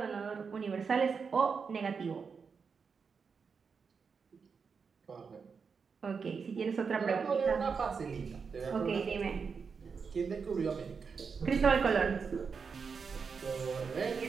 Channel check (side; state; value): left; quieter; 5.6 dB